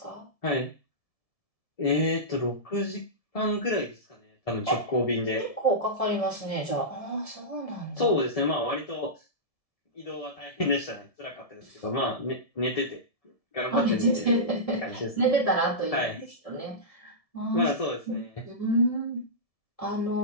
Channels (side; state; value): right; late; 1.7 ms